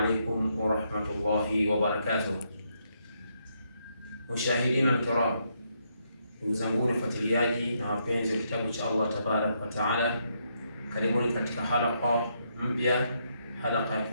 ورحمة الله وبركاته. مشاهدين الكرام، ndugu zangu wafuatiliaji na wapenzi wa kitabu cha Allah tabarak wa taala, karibuni katika halqa mpya, halqa ya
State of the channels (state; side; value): inverted; both; correlation -0.77